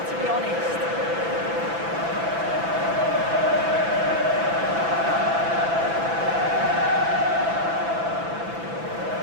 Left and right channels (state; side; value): late; left; 6.0 ms